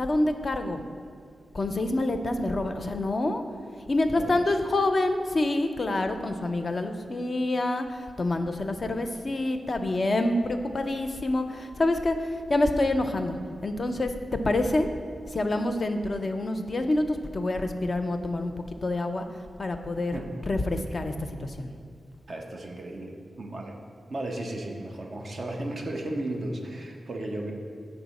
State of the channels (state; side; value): normal; both; correlation 0.93